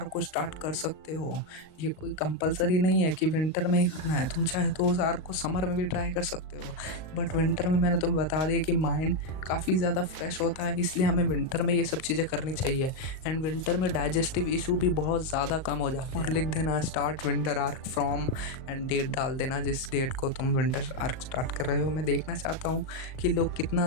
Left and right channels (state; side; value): late; right; 38 ms